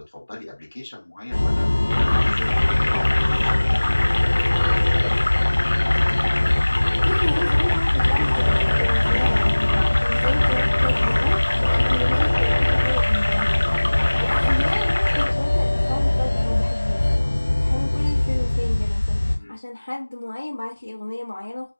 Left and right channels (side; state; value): both; inverted; correlation -1.00